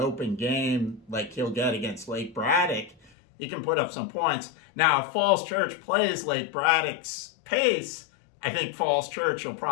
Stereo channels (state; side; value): drops out; right; at 3.1 s